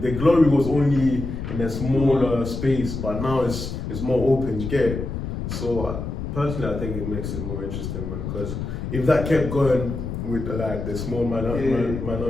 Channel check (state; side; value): noise; left; rumble, 5 dB below the sound